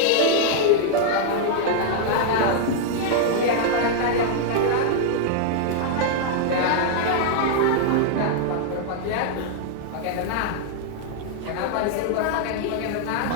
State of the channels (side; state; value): both; different; correlation -0.01